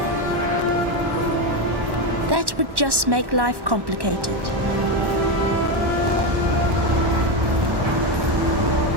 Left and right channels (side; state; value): left; late; 1.1 ms